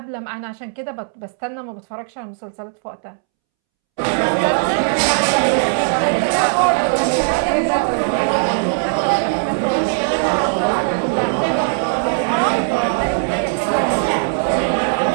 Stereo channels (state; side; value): silent; left; 67 dB below the other